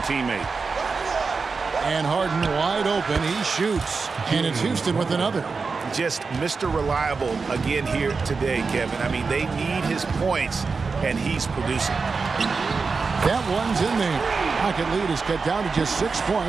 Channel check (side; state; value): left; quieter; 4.6 dB